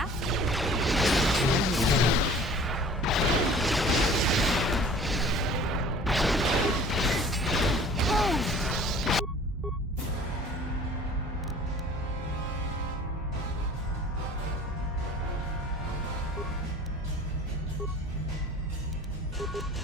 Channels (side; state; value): both; normal; correlation 0.47